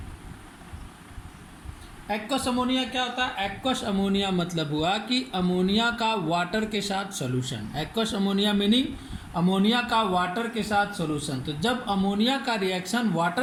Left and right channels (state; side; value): identical; both; correlation 1.00